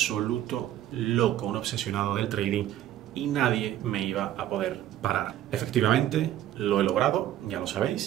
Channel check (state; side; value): quieter; left; 12.5 dB